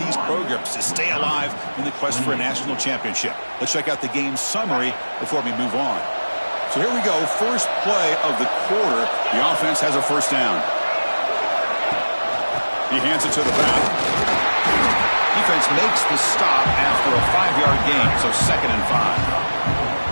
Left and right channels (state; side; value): inverted; both; correlation -1.00